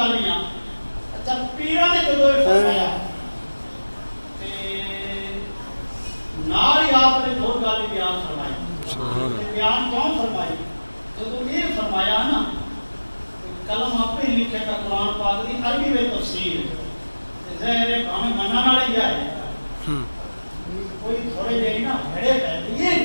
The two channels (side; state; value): both; inverted; correlation -1.00